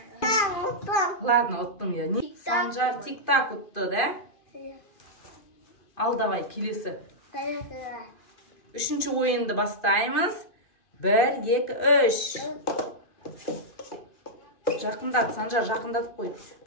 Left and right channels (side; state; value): right; late; 2.5 ms